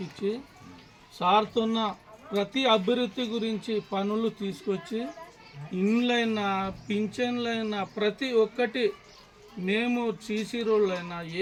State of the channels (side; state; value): both; identical; correlation 1.00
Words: ఇచ్చి సార్తో ప్రతి అభివృద్ధి గురించి పనులు తీసుకొచ్చి ఇండ్లైనా పింఛన్లైనా ప్రతి ఒక్కటి మేము సీసీ రోడ్లైనా